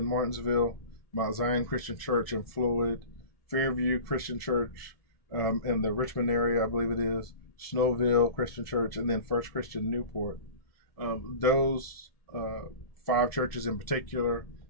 Martinsville, Mount Zion Christian Church in Floyd, Fairview Christian Church in the Richmond area, I believe it is, Snowville Christian Church, and then First Christian Newport. Those 5 churches in particular,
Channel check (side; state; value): right; late; 1.7 ms